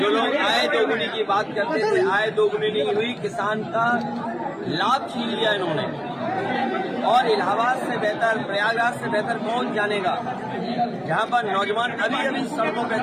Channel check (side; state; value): both; identical; correlation 1.00